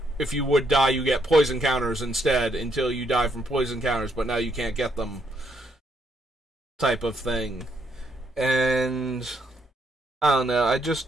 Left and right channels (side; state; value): both; normal; correlation 0.74